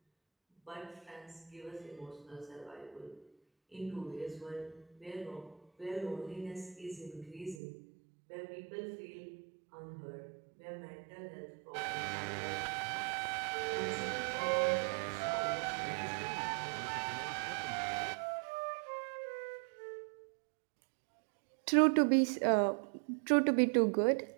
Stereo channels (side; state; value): left; drops out; at 7.6 s